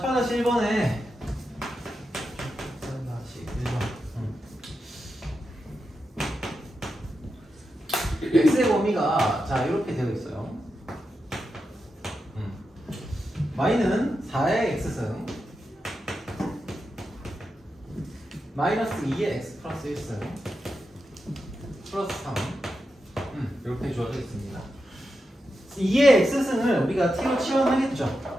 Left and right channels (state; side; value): normal; both; correlation 0.88